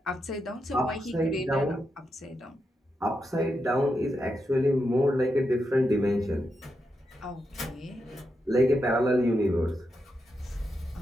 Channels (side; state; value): both; normal; correlation 0.85